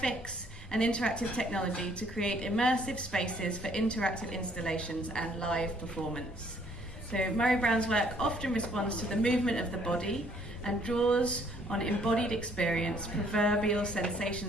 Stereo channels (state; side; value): normal; both; correlation 0.63